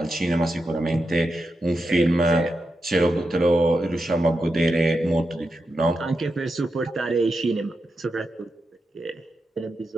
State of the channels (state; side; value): normal; both; correlation 0.88